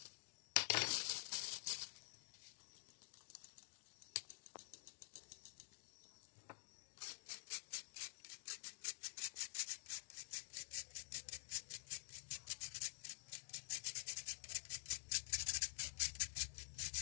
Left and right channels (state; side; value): silent; right; digital silence